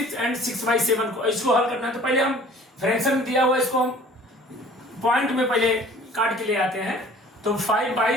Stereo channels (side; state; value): both; normal; correlation 0.50